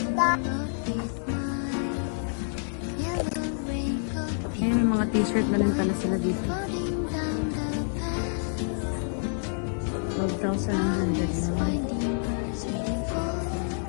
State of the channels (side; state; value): right; silent; digital silence